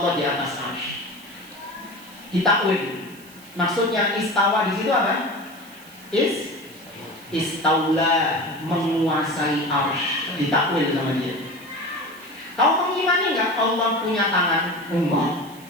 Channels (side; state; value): right; noise; hiss, 22 dB below the sound